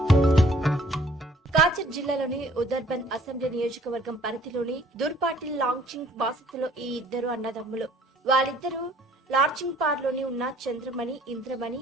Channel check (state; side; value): normal; both; correlation 0.57